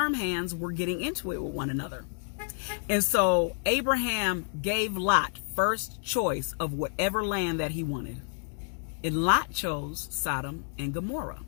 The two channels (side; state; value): right; silent; 58 dB below the other